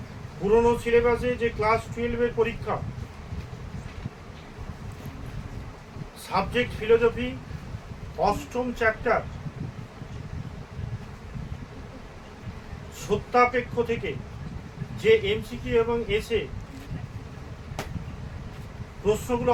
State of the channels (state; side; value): identical; both; correlation 1.00